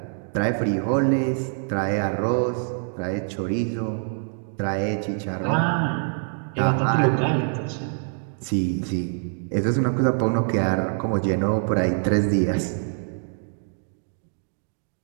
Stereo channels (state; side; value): silent; left; 58 dB below the other